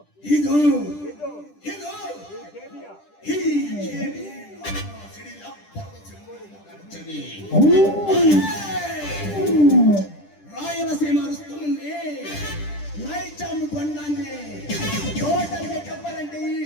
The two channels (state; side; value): late; right; 10 ms